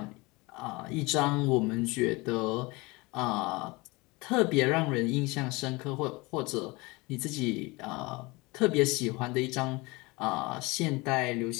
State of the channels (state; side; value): quieter; right; 24.4 dB